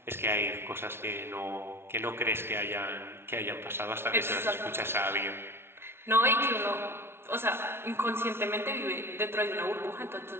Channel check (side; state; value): left; late; 0.12 ms